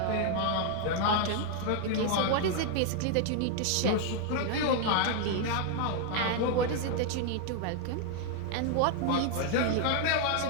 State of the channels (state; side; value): different; both; correlation 0.00